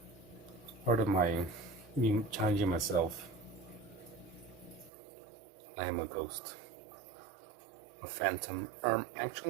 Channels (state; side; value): drops out; left; at 4.9 s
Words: Part of me challenging myself. I am a ghost. A phantom.